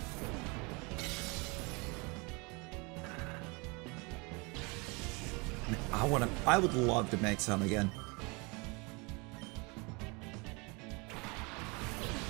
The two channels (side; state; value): left; quieter; 28.7 dB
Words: I would love to make some again.